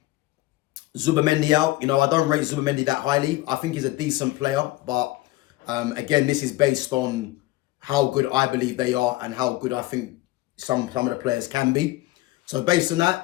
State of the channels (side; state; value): right; quieter; 18.1 dB